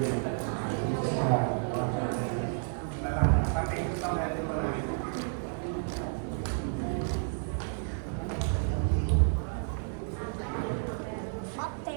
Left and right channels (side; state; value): left; silent; digital silence